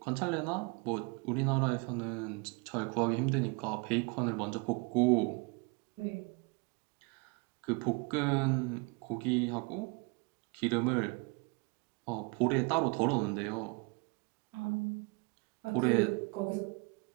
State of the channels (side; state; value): left; quieter; 29.9 dB